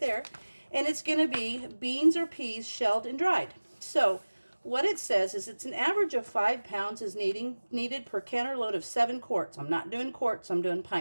And it's going to be beans or peas shelled and dried. So what it says is it's an average of 5 pounds is needed per canner load of 7 quarts. I'm not doing quarts, I'm doing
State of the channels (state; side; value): inverted; both; correlation -1.00